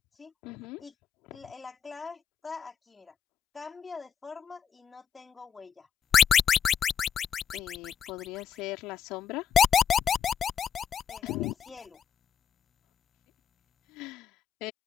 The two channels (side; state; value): right; quieter; 8.0 dB